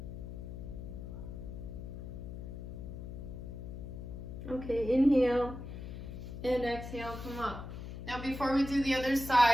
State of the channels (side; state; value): left; noise; hum, 8 dB below the sound